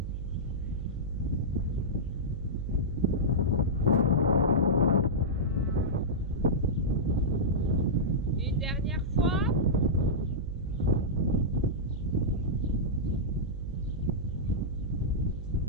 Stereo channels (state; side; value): noise; right; hum, 6 dB below the sound